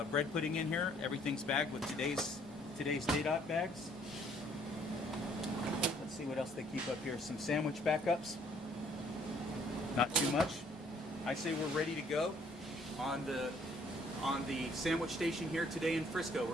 bread pudding in here. Everything's bagged with today's Day-Dot bags. Let's see what else they keep up here. Some sandwich backups. Not too much. I say we're ready to go on the sandwich station here today in Frisco.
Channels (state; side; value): normal; both; correlation 0.63